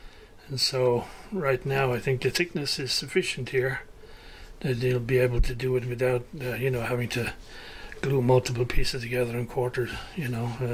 And so right now I think the thickness is sufficient here that you'll be able to do it without having to glue multiple pieces together and quarter,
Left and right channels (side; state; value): both; identical; correlation 1.00